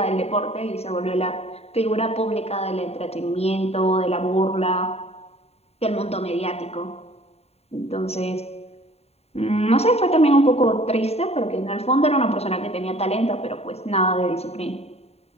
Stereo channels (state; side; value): late; right; 0.30 ms